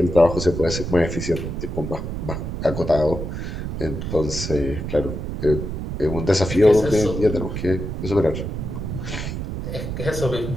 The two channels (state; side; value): noise; right; rumble, 5 dB below the sound